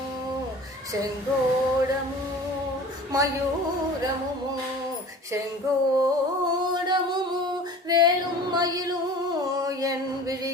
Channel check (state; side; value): normal; both; correlation 0.42